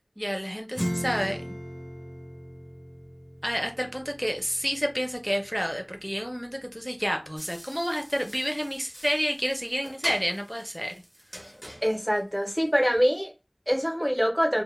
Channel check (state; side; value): identical; both; correlation 1.00